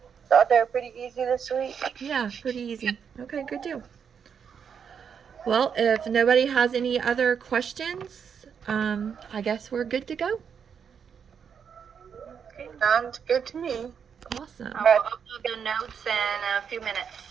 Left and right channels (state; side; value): quieter; left; 7.1 dB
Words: Thought they were pretty easy this week. Yeah, pretty easy. Okay, good deal. Well, if nobody has any other questions, I guess we're good to go. Sounds good to me. Awesome. I'll upload the notes in a few minutes.